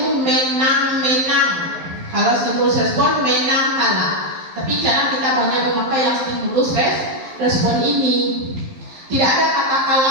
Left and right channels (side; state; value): left; late; 11 ms